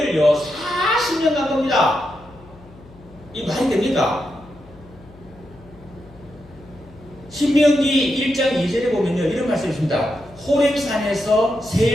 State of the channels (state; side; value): noise; left; hum, 23 dB below the sound